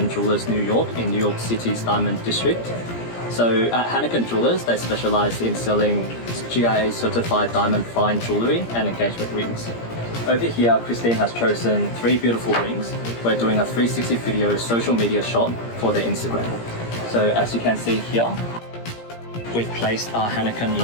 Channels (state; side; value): late; right; 17 ms